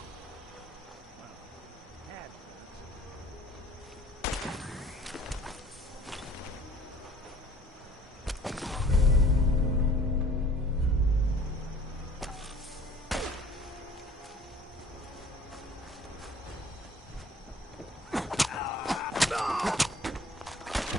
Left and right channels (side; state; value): both; normal; correlation 0.51